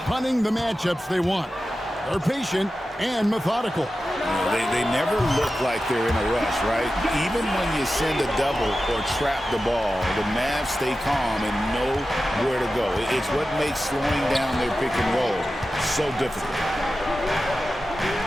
the matchups they want. They're patient and methodical. They never look like they're in a rush, right? Even when you send a double or trap the ball, the Mavs stay calm and know where to go. It's what makes slowing down their pick and roll so difficult.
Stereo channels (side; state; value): both; normal; correlation 0.93